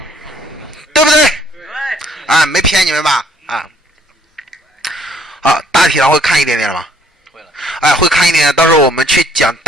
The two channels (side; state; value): both; normal; correlation 0.63